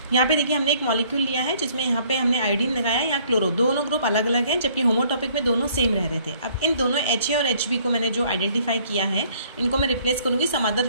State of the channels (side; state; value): both; inverted; correlation -0.60